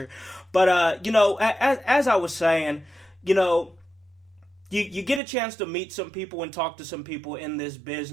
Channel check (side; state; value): left; drops out; at 5.2 s